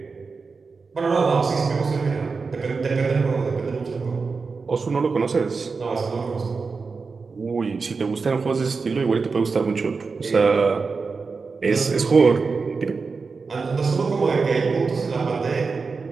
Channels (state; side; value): quieter; left; 4.6 dB